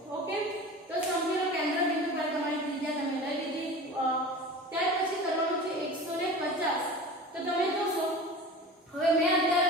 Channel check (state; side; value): normal; both; correlation 0.35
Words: ઓકે, તો સમજી લો કેન્દ્ર બિંદુ પર તમારી ત્રિજ્યા તમે લઈ લીધી. ત્યાર પછી કરવાનું છે 150. તો તમે જોશો હવે મેં અત્યારે